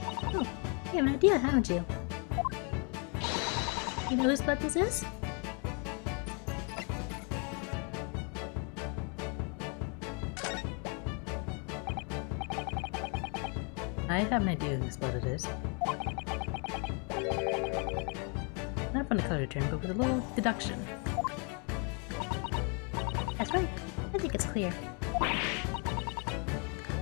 Oh, you have an idea, haven't you? You know whose blood this is? I have an idea whose blood it is. Not from the color term, but with a little deduction. That's right. I think it's clear.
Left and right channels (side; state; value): right; quieter; 36.4 dB